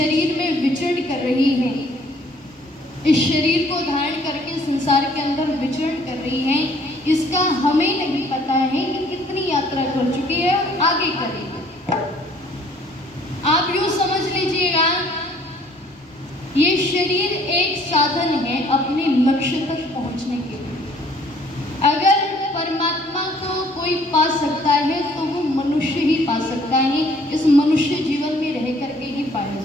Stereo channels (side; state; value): both; normal; correlation 0.59